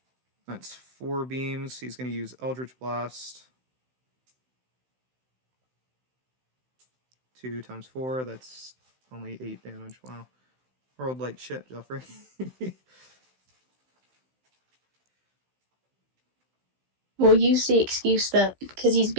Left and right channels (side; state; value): left; late; 16 ms